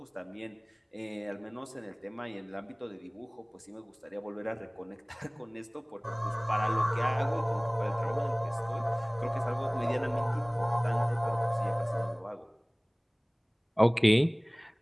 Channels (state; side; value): identical; both; correlation 1.00